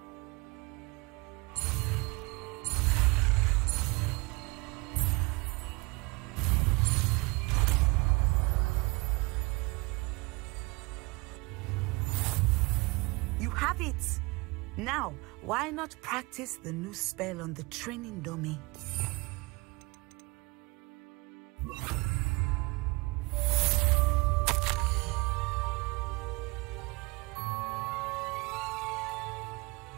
You have it! Now, why not practice the new spell on the training dummy?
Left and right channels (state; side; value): quieter; left; 25.9 dB